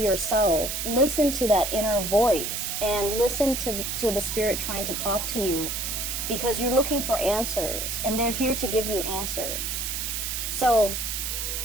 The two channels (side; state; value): right; noise; hiss, 3 dB below the sound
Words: listen to that inner voice, and listen to the spirit trying to talk to you, because you're looking for answers and they're here to give you answers. So